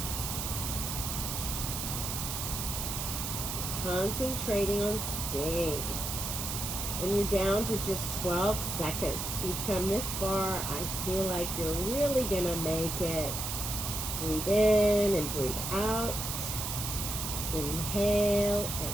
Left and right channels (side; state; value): right; noise; hiss, 3 dB below the sound